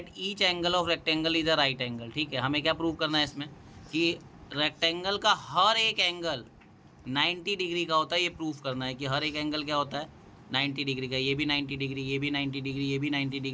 each angle of rectangle is a right angle. ठीक है, हमें क्या प्रूव करना है इसमें कि रेक्टेंगल का हर एक एंगल 90 डिग्री का होता है। ये प्रूफ करना है कि हर एक एंगल क्या होता है 90 डिग्री का। ये भी 90 डिग्री, ये भी 90 डिग्री, ये भी 90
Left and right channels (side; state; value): both; identical; correlation 1.00